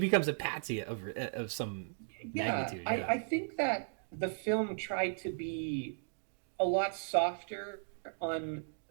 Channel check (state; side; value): silent; left; digital silence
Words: a patsy of some Yeah, magnitude. I, Yeah. I think that the film tried to be a lot softer on